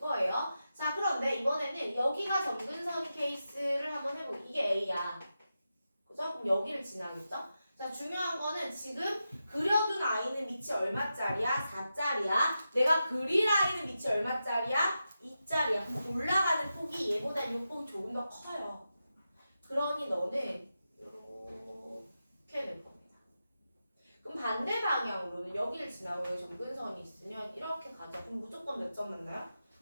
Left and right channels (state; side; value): inverted; both; correlation -0.90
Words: 자, 그런데 이번에는 여기가 점근선 케이스를 한번 해보고 이게 A야. 그죠? 그럼 여기를 지나겠죠? 자, 중요한 거는 지금 그려둔 아이는 밑이 얼마짜리야? 4짜리야. 내가 그릴 아이는 밑이 얼마짜리야? 2짜리야. 올라가는 폭이 얘보다 6폭이 조금 더 커요. 그러니 너는 이렇게 낼 겁니다. 그럼 반대 방향으로는 여기를 지나고 여기 점근선이 있으면 이렇게 가죠. 그럼 무조건 몇 점 만나요?